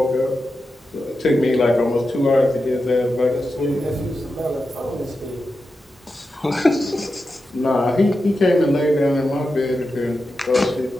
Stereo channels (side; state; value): both; normal; correlation 0.90